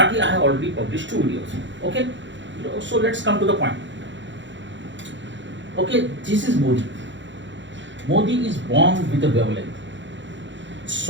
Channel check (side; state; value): left; late; 0.54 ms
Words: I have already published 2 videos. Okay, so let's come to the point. Okay, this is Modi. Modi is born with a wavelength.